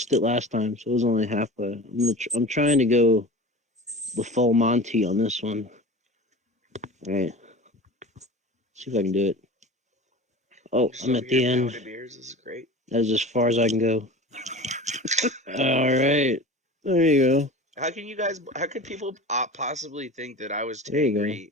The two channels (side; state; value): both; normal; correlation 0.35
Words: it last time, so it was only halfway. I'm trying to go the full Monty on this one. All right. See if I can do it. Oh, Just I'm over at the here end. pounding beers. This is great. That's as far as I can go. All right. There you go. How could people possibly think that I was There you go.